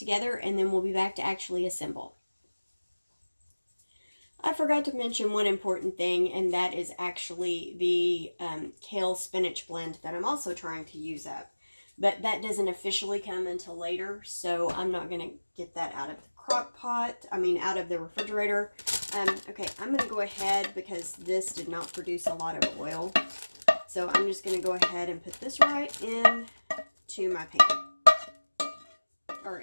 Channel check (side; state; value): both; inverted; correlation -1.00